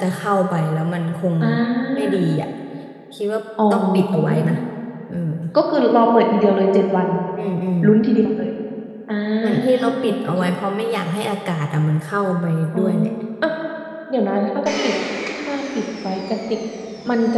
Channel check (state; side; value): identical; both; correlation 1.00